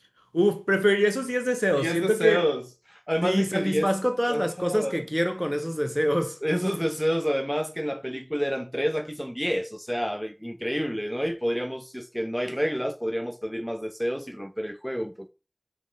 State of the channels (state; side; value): identical; both; correlation 1.00